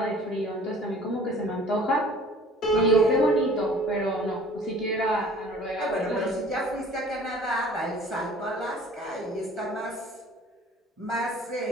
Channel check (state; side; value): normal; both; correlation 0.49